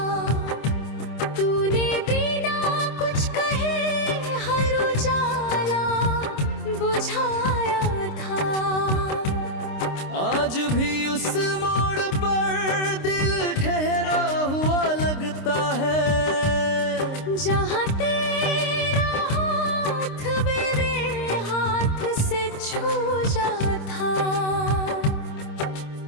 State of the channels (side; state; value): right; late; 26 ms